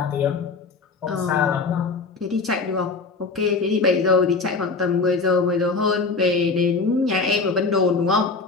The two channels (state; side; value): quieter; right; 4.2 dB